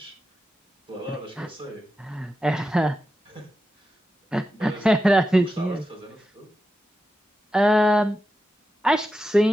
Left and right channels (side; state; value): both; normal; correlation 0.90